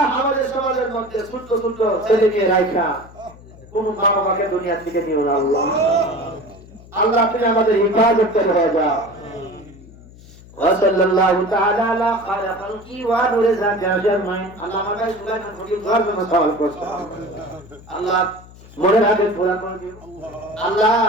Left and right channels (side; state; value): left; noise; hum, 21 dB below the sound